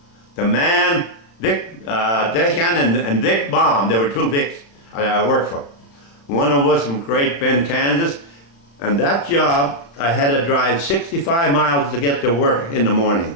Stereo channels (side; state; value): right; late; 35 ms